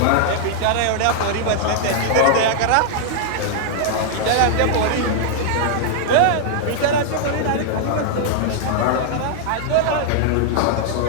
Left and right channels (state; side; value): different; both; correlation -0.01